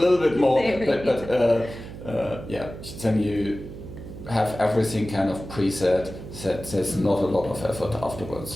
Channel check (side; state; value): right; noise; hum, 12 dB below the sound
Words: bit more, but then you have everything kind of preset, that there's not a lot of effort